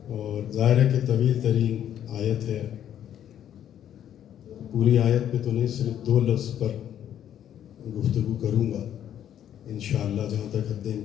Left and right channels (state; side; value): quieter; right; 10.3 dB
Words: اور ظاہر ہے کہ طویل ترین آیت ہے۔ پوری آیت پہ تو نہیں، صرف 2 لفظ پر گفتگو کروں گا انشاءاللہ جہاں تک حد